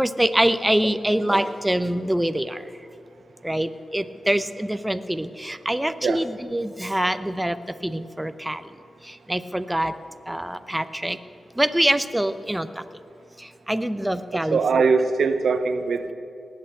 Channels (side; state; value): both; normal; correlation 0.96